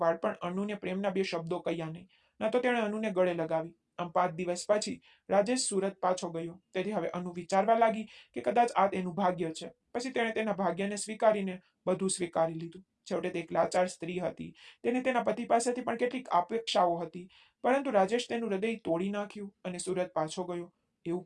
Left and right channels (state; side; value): identical; both; correlation 1.00